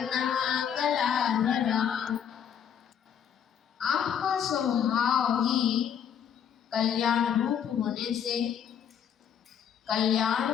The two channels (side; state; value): right; quieter; 8.5 dB